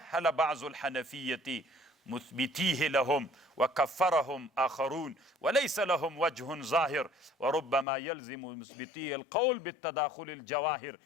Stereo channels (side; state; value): right; drops out; at 7.9 s